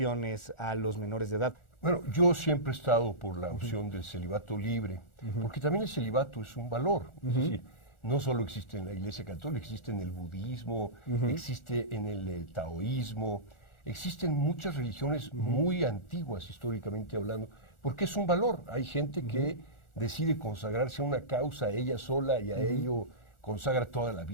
a los menores de edad. Bueno, yo siempre he estado por la opción del celibato libre, porque también el celibato es un valor. Es decir, no solo existe en la Iglesia Católica, existe en el budismo, existe en el taoísmo, existen muchas religiones muy antiguas históricamente hablando, porque es un valor. Hay gente que decide consagrarse a una causa ella sola y a ello consagra toda la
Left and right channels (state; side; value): late; right; 1.4 ms